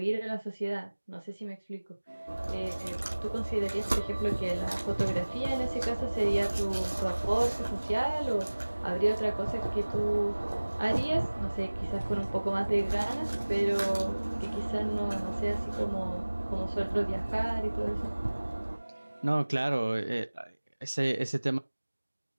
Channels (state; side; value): inverted; both; correlation -1.00